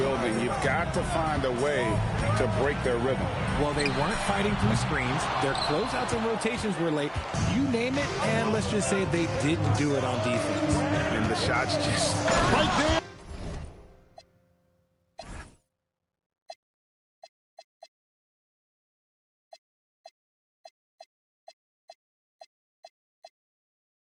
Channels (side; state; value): both; identical; correlation 1.00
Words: You've got to find a way to break their rhythm. Well, they weren't fighting through screens. Their closeouts and rotations were late. You name it, and let's just say they didn't do it on defense. And the shots just... Right there.